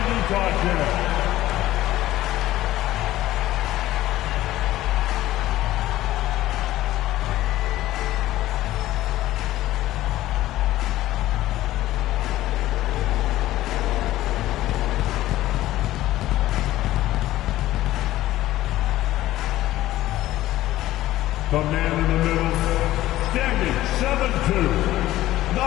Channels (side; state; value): right; quieter; 15.2 dB